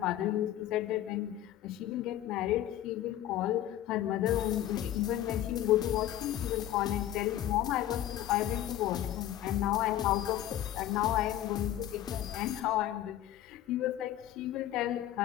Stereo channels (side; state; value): right; quieter; 12.6 dB